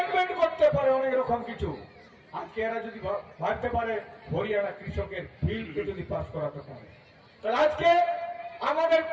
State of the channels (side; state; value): both; identical; correlation 1.00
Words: করতে পারে অনেক রকম কিছু, আজকে এরা যদি ভাবতে পারে হরিয়ানা কৃষকের বিলকে যদি পাস করাতে পারে, তাহলে আজকে আমাদের